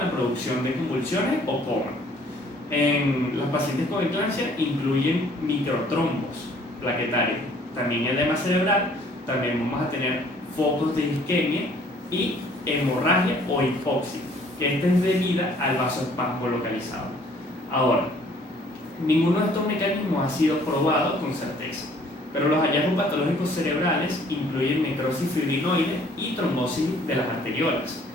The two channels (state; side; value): normal; both; correlation 0.58